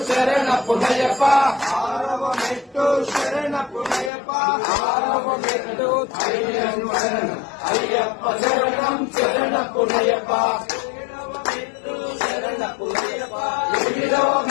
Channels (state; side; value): drops out; right; at 4.1 s